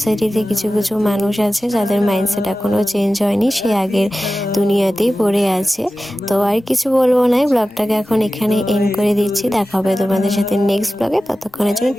কিছু কিছু মানুষ আছে যাদের মাইন্ডসেট এখনও চেঞ্জ হয়নি, সে আগের দুনিয়াতেই পড়ে আছে। তো আর কিছু বলবো না, ব্লগটাকে এখন এখানে এন্ড করে দিচ্ছি। দেখা হবে তোমাদের সাথে নেক্সট ব্লগে, ততক্ষণের জন্য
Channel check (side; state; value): both; normal; correlation 0.95